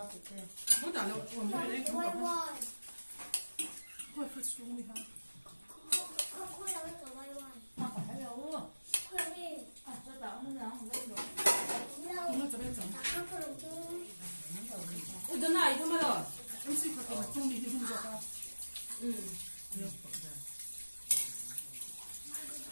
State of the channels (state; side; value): inverted; both; correlation -1.00